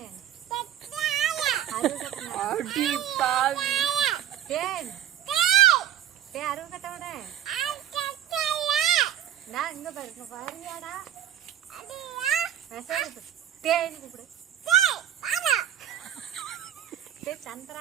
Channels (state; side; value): quieter; left; 10.9 dB